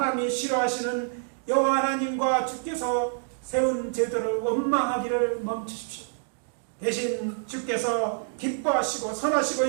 싫어하시는 여호와 하나님과 주께서 세운 제도를 원망하기를 멈추십시오. 대신 주께서 기뻐하시고 선하시고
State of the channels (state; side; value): silent; left; digital silence